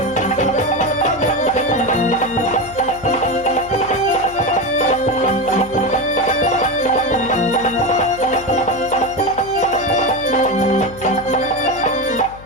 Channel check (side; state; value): left; noise; hum, 18 dB below the sound